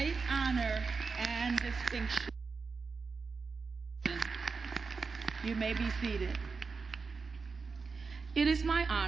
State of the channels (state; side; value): quieter; left; 4.7 dB